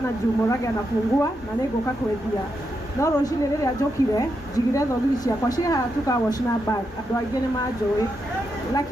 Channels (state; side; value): normal; both; correlation 0.84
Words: juu Murage anafungua na niguka kwendia no roshine riri ajokire jigire thogiri ciakwa ciha tukawashina bag andu aingi ni manjui,